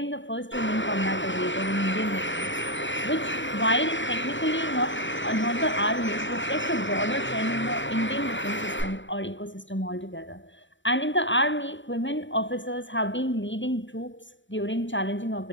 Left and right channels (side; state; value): right; late; 0.54 ms